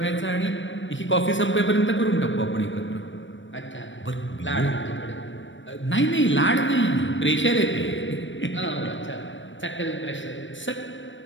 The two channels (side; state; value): right; late; 0.55 ms